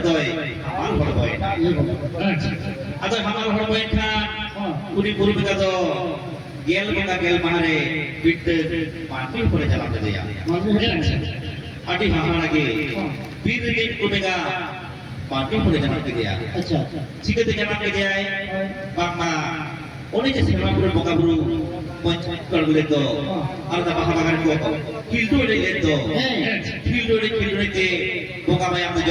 toy hamal boy atau hamal boy kan uni buru mereka tu gel mahare bit mati pun jalan jadi ya adi hamal lagi bir दिन कुनेगा party पुरे जाना के दिया अच्छा ठीक है जाना के दिया बामा ओने जैसे हम पुरे बोका बुरु पंच कर बोले तो और दा बाहा बागान को किल्डो ले ले तो किल्डो ले के बोका भाई हम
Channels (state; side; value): identical; both; correlation 1.00